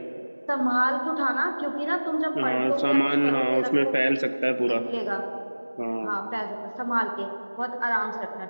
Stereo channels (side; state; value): both; inverted; correlation -1.00